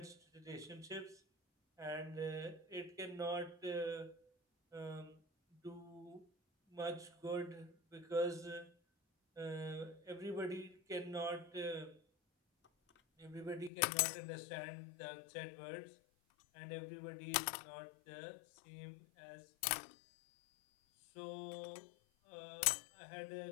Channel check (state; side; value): drops out; right; at 13.7 s